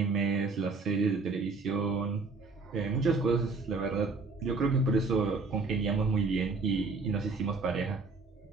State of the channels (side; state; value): left; quieter; 4.0 dB